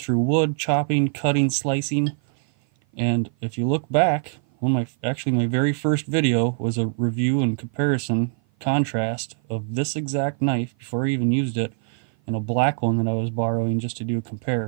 wood, chopping, cutting, slicing. And if you look back, my very first video was a review and comparison contrast of this exact knife before I even used it, and a black one that I was borrowing just to do a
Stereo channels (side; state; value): left; silent; 56 dB below the other